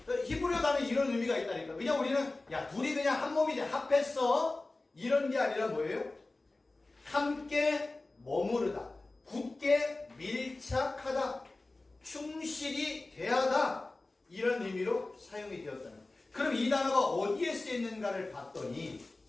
히브리어 단어에 이런 의미가 있다니까. 그냥 우리는 야 둘이 그냥 한 몸이 돼 합했어 이런 게 아니라 뭐예요? 함께 머무르다, 굳게 밀착하다, 충실히 대하다, 이런 의미로 사용이 되었다는 거예요. 그럼 이 단어가 어디에 쓰였는가를 봤더니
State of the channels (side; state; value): right; quieter; 3.1 dB